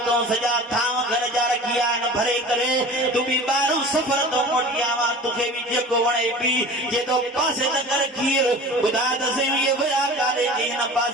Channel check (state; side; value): normal; both; correlation 0.39